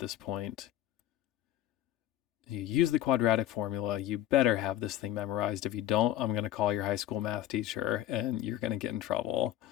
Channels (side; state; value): right; quieter; 13.1 dB